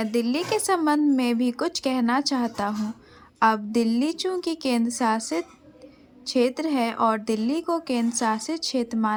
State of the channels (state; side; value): identical; both; correlation 1.00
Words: दिल्ली के संबंध में भी कुछ कहना चाहता हूँ। अब दिल्ली चूंकि केंद्र शासित क्षेत्र है और दिल्ली को केंद्र शासित क्षेत्र